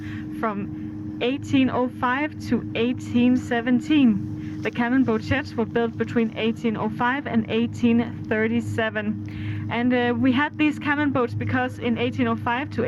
from 1805 to 1817. The cannon boat sheds were built between 1805 and 1837. And we had these cannon boats because in 1805 to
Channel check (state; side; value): identical; both; correlation 1.00